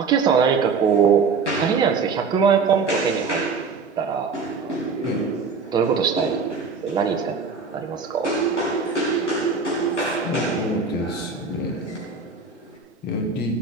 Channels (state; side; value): quieter; left; 4.9 dB